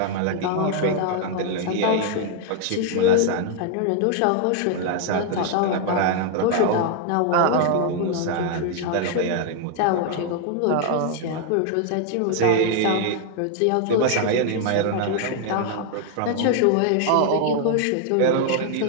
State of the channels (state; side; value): different; both; correlation 0.00